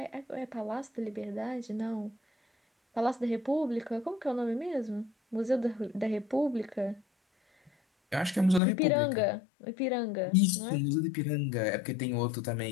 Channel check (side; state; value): right; drops out; at 8.6 s